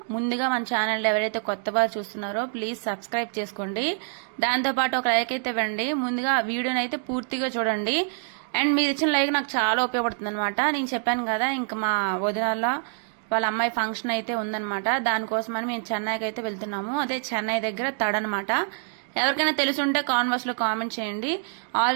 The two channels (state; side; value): silent; left; 61 dB below the other